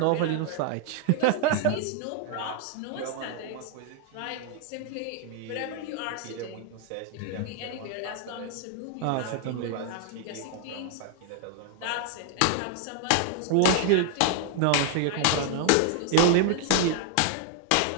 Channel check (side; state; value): both; different; correlation 0.00